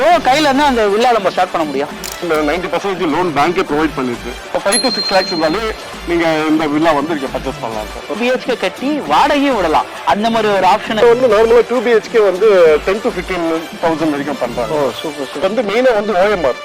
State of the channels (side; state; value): both; identical; correlation 1.00